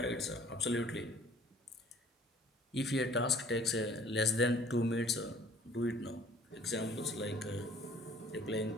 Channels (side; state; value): both; normal; correlation 0.54